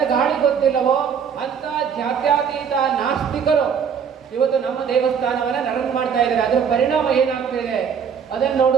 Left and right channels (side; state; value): left; quieter; 7.1 dB